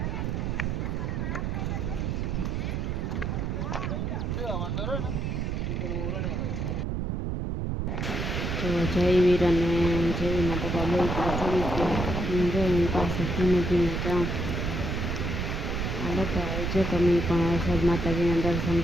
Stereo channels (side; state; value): right; noise; rumble, 1 dB below the sound